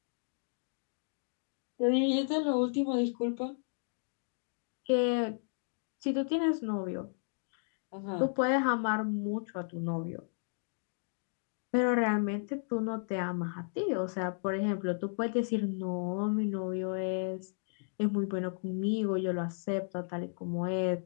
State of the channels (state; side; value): silent; right; digital silence